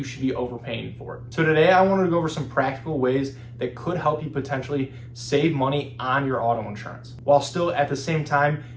should be overpaying for it. So today I wanted to go over some practical ways that could help you potentially save money on your auto insurance, while still at the same time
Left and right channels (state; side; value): identical; both; correlation 1.00